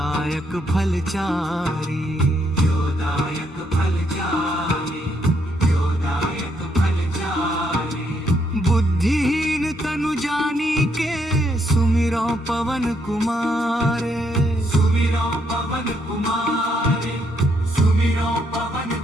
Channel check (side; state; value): both; normal; correlation 0.74